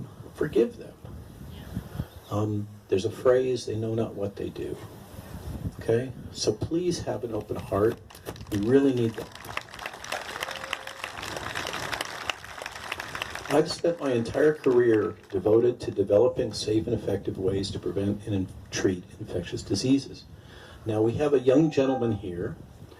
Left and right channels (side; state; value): both; identical; correlation 1.00